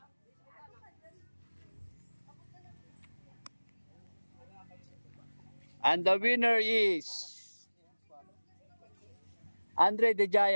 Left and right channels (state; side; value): inverted; both; correlation -1.00